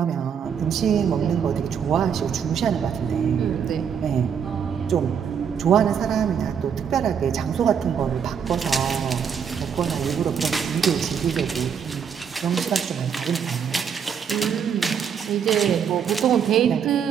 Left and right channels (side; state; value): left; quieter; 7.4 dB